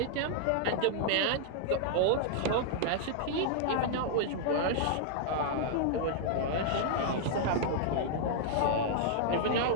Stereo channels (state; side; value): different; both; correlation -0.01